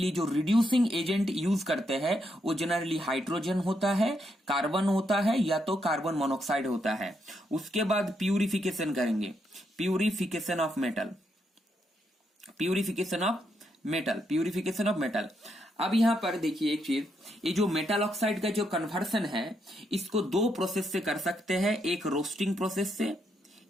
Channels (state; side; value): normal; both; correlation 0.79